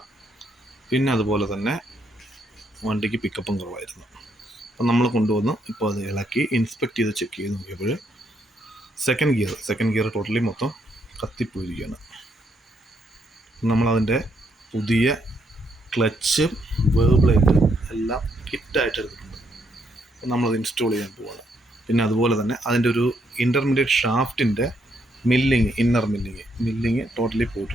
പിന്നെ അതുപോലെ തന്നെ വണ്ടിക്ക് പിക്കപ്പും കുറവായിരുന്നു. അപ്പം നമ്മൾ കൊണ്ടുവന്ന് ഇപ്പോൾ അത് ഇളക്കി ഇൻസ്പെക്ട് ചെയ്ത് ചെക്ക് ചെയ്ത് നോക്കിയപ്പോൾ സെക്കൻഡ് ഗിയർ ടോട്ടലി മൊത്തം കത്തിപ്പോയിരിക്കുകയാണ്. നമ്മളതിൻ്റെ പുതിയ ക്ലച്ചും വേർബ്ലേറ്റും എല്ലാം കിറ്റായിട്ട് എടുത്തിട്ടുണ്ട്. നമ്മളത് ഇൻസ്റ്റാൾ ചെയ്യാൻ പോവാണ്. പിന്നെ അതുപോലെ തന്നെ അതിൻ്റെ ഒരു ഇൻ്റർമീഡിയറ്റ് ഷാഫ്റ്റിൻ്റെ ഇന്നർ മില്ലിങ് ടോട്ടലി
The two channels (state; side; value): normal; both; correlation 0.75